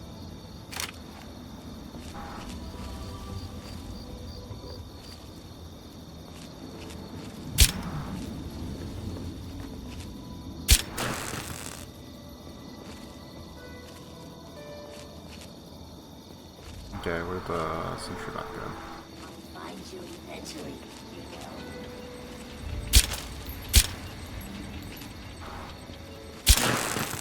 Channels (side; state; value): both; identical; correlation 1.00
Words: Okay, where'd the sentry bot go? Find you eventually.